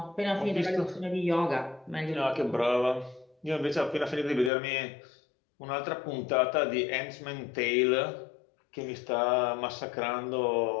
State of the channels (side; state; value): right; drops out; at 4.5 s